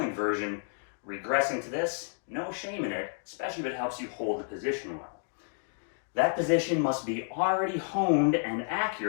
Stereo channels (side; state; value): right; silent; digital silence